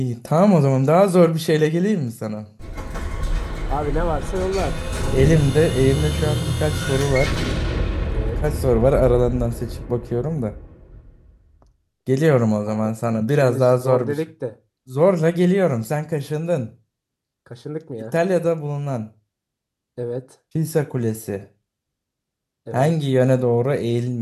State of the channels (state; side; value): identical; both; correlation 1.00